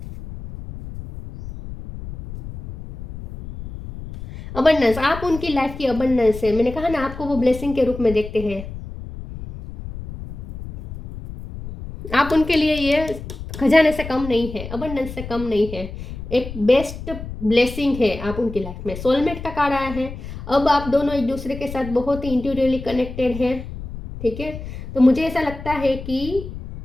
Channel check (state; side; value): noise; left; rumble, 11 dB below the sound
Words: अबंडेंस। आप उनकी लाइफ की अबंडेंस है। मैंने कहा ना, आपको वो ब्लेसिंग के रूप में देखते हैं। आप उनके लिए ये खजाने से कम नहीं है, अबंडेंस से कम नहीं है, एक बेस्ट ब्लेसिंग है आप उनकी लाइफ में। सोलमेट का कार्ड आया है। अब आप दोनों एक दूसरे के साथ बहुत ही इंट्यूटिवली कनेक्टेड हैं, ठीक है। तो मुझे ऐसा लगता है कि